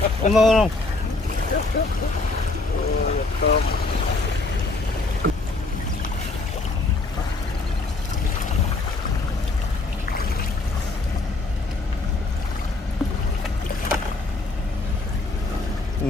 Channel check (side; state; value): right; quieter; 3.4 dB